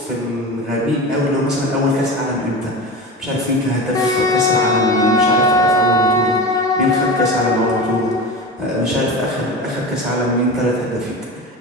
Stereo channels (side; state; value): both; normal; correlation 0.28